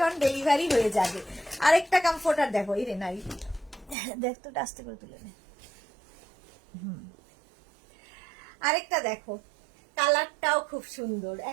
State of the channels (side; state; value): left; drops out; at 4.0 s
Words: অন ডেলিভারি হয়ে যাবে। আরেকটা কমফোর্টার দেখো, এই রে নাই, দেখ তো, আস্তে করে তুলে নে। আরেকটা দেখো, কালারটাও খুব সুন্দর,